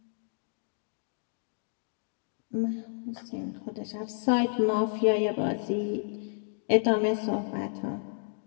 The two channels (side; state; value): right; silent; digital silence